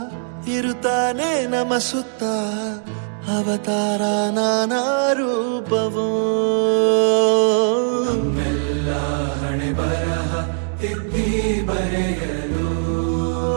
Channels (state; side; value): silent; left; digital silence